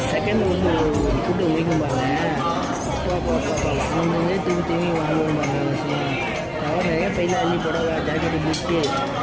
செகண்ட் வந்து ஒரு கூட்டம் முடிக்கும் பாருங்க. அப்பா வாங்கினதே திரும்பி வாங்குவோம் பாருங்க. கவர் நிறைய பையில் அள்ளி புடவை ஜாக்கெட்டு பிட்டு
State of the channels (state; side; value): identical; both; correlation 1.00